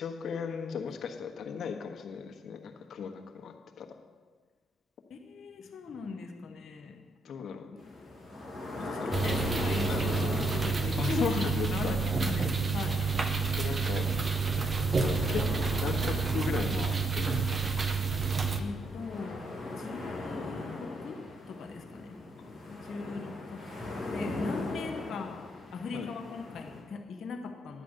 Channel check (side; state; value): both; normal; correlation 0.74